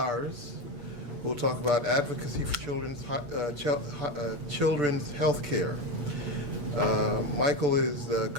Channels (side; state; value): left; late; 8.3 ms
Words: who will talk about advocacy for children's health care. Michael is the